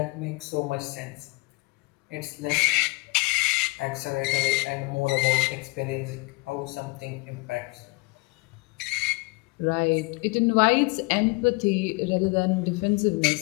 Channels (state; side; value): quieter; right; 27.0 dB